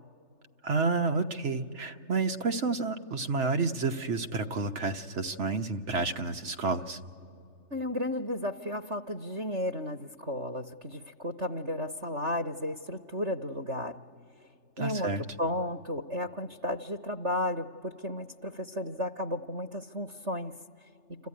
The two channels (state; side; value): late; left; 3.3 ms